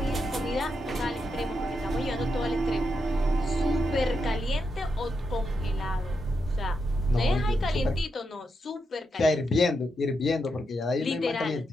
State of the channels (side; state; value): both; normal; correlation 0.84